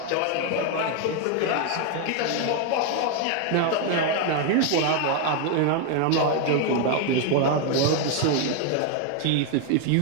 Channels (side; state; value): both; different; correlation 0.01